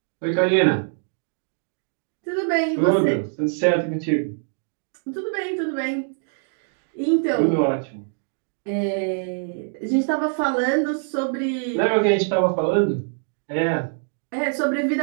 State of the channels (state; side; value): silent; left; digital silence